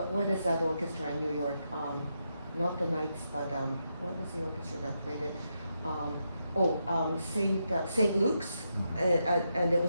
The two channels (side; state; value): both; inverted; correlation -0.83